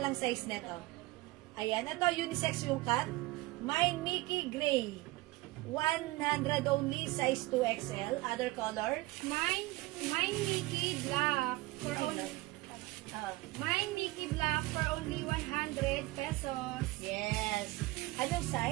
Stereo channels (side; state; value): left; quieter; 20.3 dB